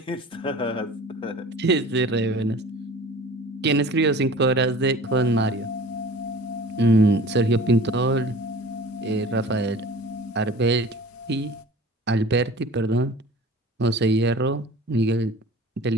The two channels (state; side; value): normal; both; correlation 0.42